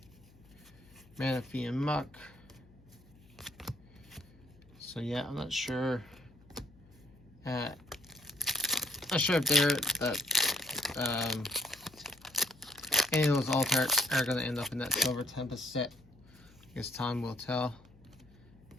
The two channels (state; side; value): noise; left; hum, 26 dB below the sound